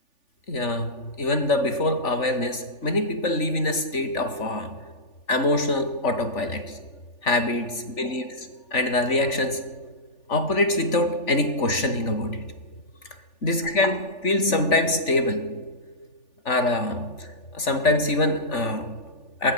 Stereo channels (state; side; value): late; right; 3.4 ms